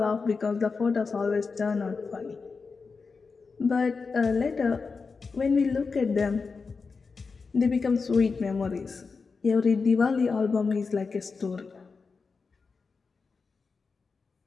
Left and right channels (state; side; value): quieter; right; 4.7 dB